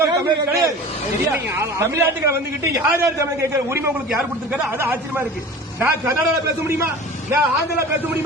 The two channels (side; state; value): both; normal; correlation 0.38